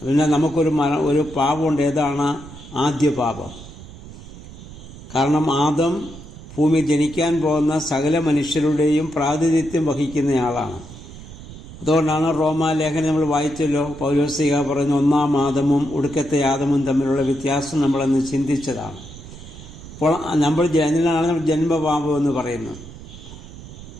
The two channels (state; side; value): noise; right; rumble, 15 dB below the sound